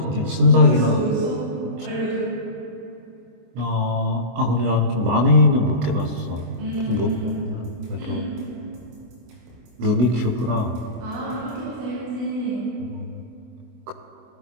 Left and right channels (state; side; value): late; left; 24 ms